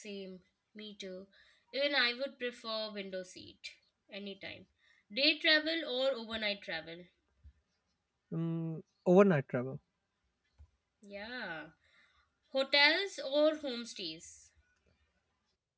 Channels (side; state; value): both; identical; correlation 1.00